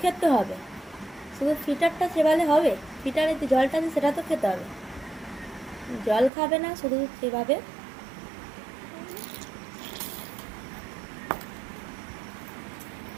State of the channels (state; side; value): drops out; left; at 6.3 s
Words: খেতে হবে, শুধু ফিটারটা চেবালে হবে? ফিটারে যে জলটা আছে সেটা তো খেতে হবে। জল খাবে না, শুধু চেবাবে।